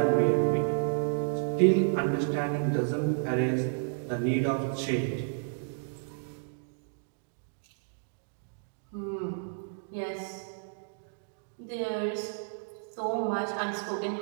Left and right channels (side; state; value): left; silent; digital silence